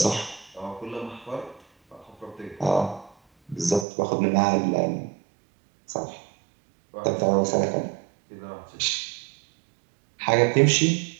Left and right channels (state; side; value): drops out; left; at 3.9 s